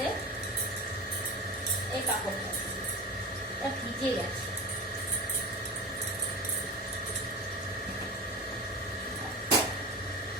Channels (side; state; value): both; normal; correlation 0.29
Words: এই কাপড়টা ভিজে গেছে।